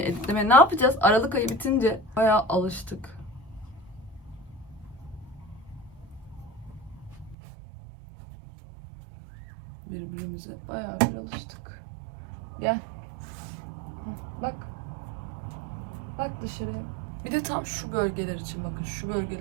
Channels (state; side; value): drops out; left; at 7.4 s